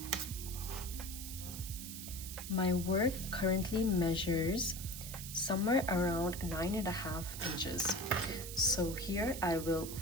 My work currently measures somewhere around 9.5 inches. So here I will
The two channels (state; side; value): noise; right; hiss, 9 dB below the sound